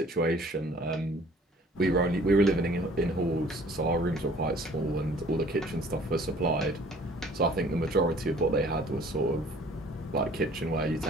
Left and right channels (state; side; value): normal; both; correlation 0.54